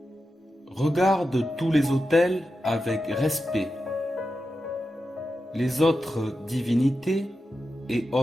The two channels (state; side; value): normal; both; correlation 0.90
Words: Regarde tous les autels avec respect. Les autres divinités et